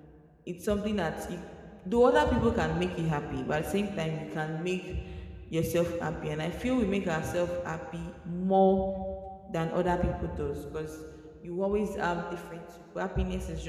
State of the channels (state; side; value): identical; both; correlation 1.00